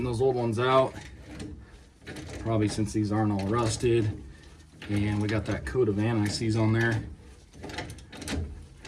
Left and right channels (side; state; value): both; identical; correlation 1.00